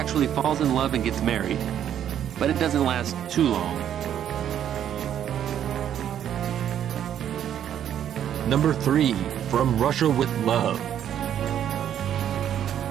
falls in love and gets married, but it doesn't last too long. Number 3, From Russia with Love.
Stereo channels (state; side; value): quieter; left; 10.0 dB